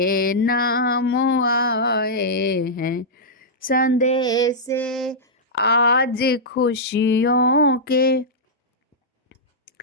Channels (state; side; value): normal; both; correlation -0.10